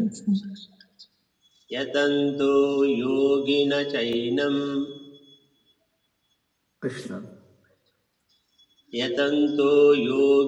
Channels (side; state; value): both; identical; correlation 1.00